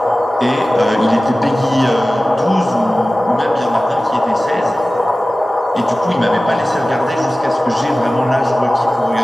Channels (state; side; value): normal; both; correlation 0.96